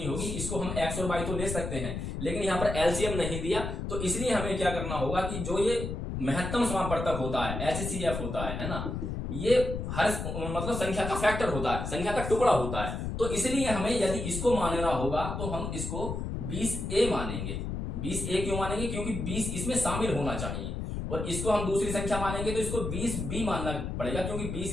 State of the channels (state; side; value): noise; left; rumble, 4 dB below the sound